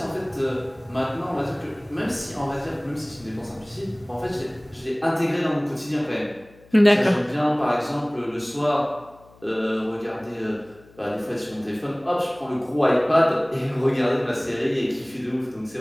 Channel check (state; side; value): noise; left; hum, 26 dB below the sound